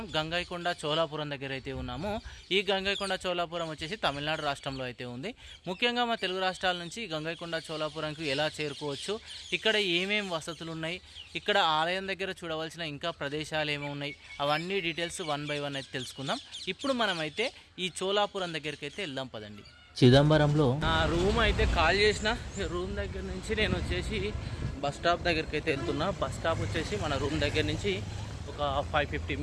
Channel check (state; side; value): identical; both; correlation 1.00